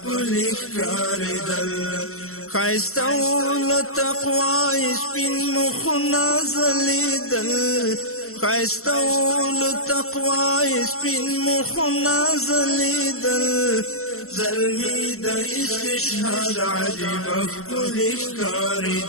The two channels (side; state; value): right; late; 0.63 ms